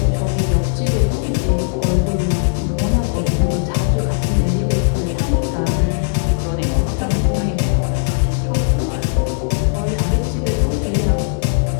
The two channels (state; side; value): silent; right; digital silence